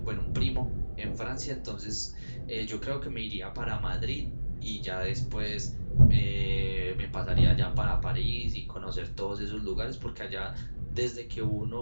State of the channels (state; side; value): inverted; both; correlation -1.00